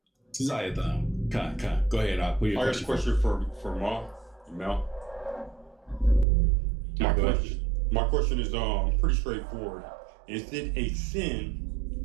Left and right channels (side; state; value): left; drops out; at 6.2 s